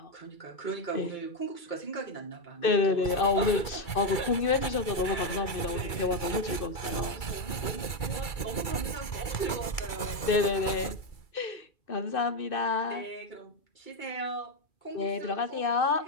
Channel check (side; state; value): right; late; 2.3 ms